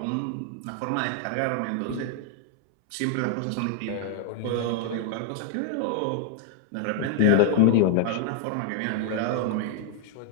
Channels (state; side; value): different; both; correlation 0.00